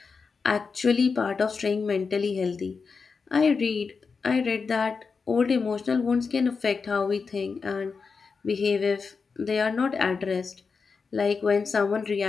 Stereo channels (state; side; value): quieter; right; 5.1 dB